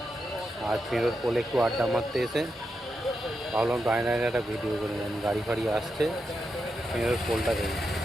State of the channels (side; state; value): both; normal; correlation 0.86